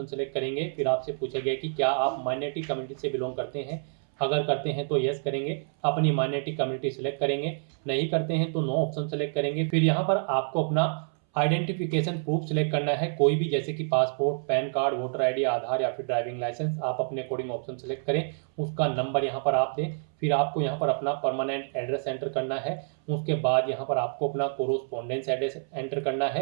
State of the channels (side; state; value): left; silent; 60 dB below the other